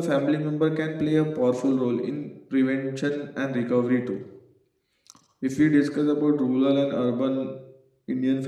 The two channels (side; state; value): both; identical; correlation 1.00